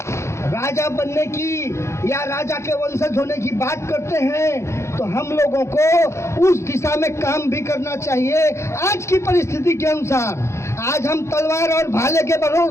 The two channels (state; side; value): late; right; 0.13 ms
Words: राजा बनने की या राजा के वंशज होने की बात करते हैं तो हम लोगों को उस दिशा में काम भी करना चाहिए। आज की परिस्थिति के अनुसार आज हम तलवार और भाले के